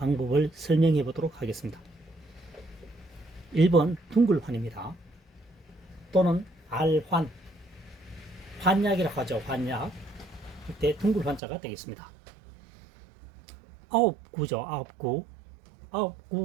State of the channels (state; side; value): drops out; left; at 11.4 s